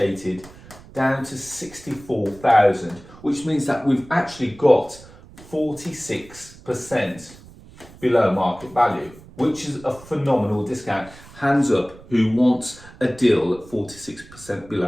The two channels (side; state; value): right; noise; rumble, 21 dB below the sound